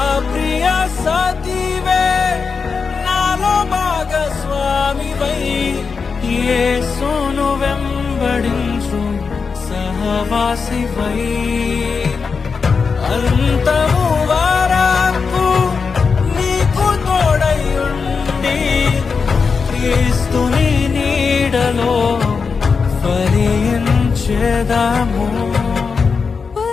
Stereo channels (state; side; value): quieter; right; 5.2 dB